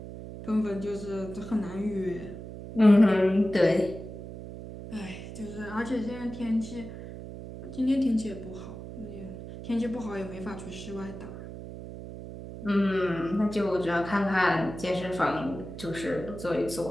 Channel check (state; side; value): noise; right; hum, 11 dB below the sound